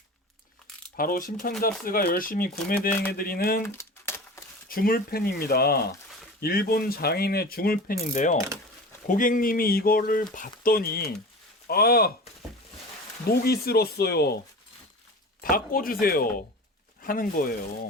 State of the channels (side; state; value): both; normal; correlation 0.34